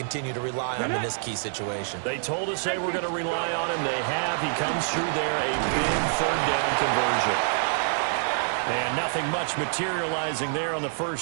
to rely on him in this key situation. They told us they were going to rely on him. They have. He comes through there, a big third down conversion. And nothing much materializing there on the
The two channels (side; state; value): left; silent; digital silence